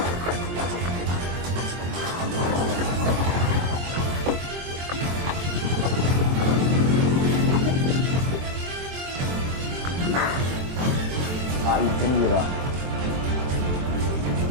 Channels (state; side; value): late; left; 23 ms